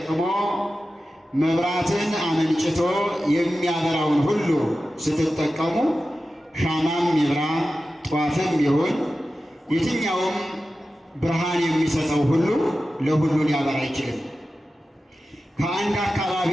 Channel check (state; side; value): normal; both; correlation 0.94